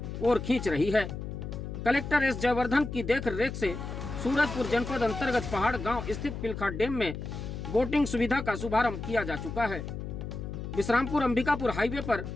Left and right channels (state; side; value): noise; left; hum, 7 dB below the sound